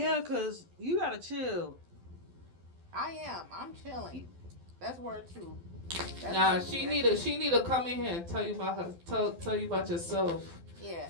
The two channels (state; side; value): late; left; 12 ms